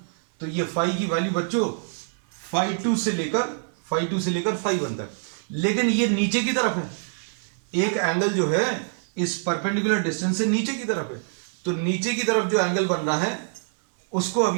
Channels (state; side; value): silent; left; 62 dB below the other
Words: तो ये फाई की वैल्यू बच्चों फाई 2 से लेकर फाई 1 तक, लेकिन ये नीचे की तरफ है, एक एंगल जो है इस परपेंडिकुलर डिस्टेंस से नीचे की तरफ है, तो नीचे की तरफ जो एंगल बन रहा है उसको